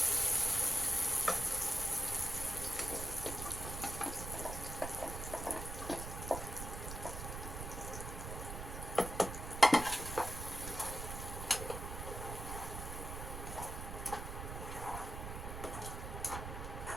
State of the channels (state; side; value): noise; right; rumble, 6 dB below the sound